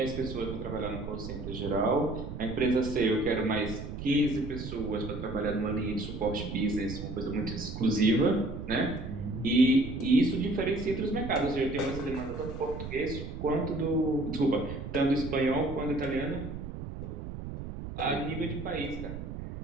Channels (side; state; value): right; noise; rumble, 8 dB below the sound